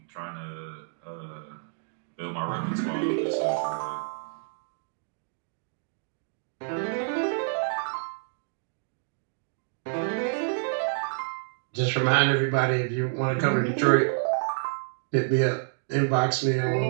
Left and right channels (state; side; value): silent; left; digital silence